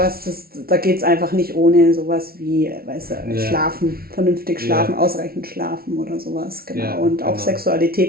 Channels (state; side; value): late; left; 0.44 ms